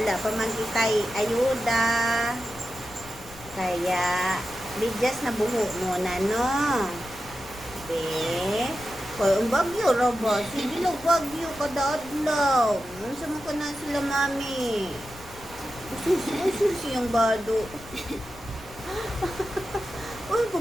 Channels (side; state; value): left; noise; rumble, 19 dB below the sound